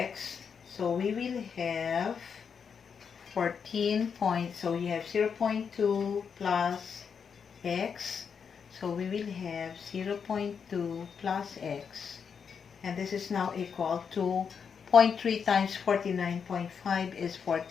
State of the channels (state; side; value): quieter; right; 6.5 dB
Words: So we will have 14 points. So you have 0.2 plus X. So we will have 0.2 plus X, and this is now equal to 0.3 times 49.5 is